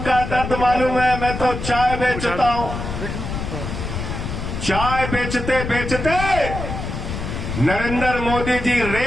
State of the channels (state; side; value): noise; left; rumble, 5 dB below the sound